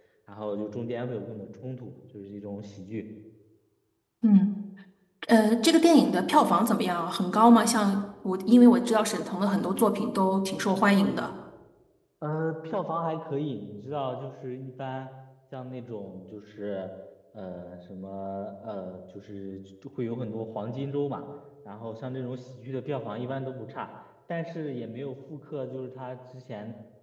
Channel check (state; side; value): identical; both; correlation 1.00